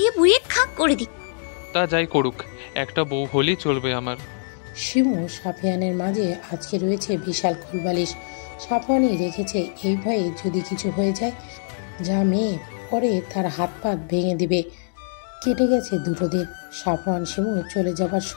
বুড়িয়ে খাক করে দিক। তা যাই করুক, একটা বউ হলেই চলবে আমার। শিমু সাফিয়ানের মাঝে আজকে রয়েছে বিশাল কোলবালিশ। সাফওয়ানি রেখেছে এই ভয়ে যদি কিছু হয়ে যায়, যা মেয়ে পরে তার হাত পা ভেঙে দিবে। কেটে গেছে দুটো দিন। সাফওয়ান শিমু চলে যাবার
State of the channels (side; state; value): right; silent; digital silence